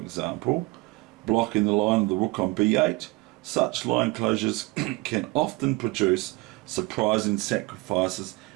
blocking the line of the rook on B8, such line closures can often produce surprising sacrifices,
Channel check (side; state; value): left; quieter; 24.0 dB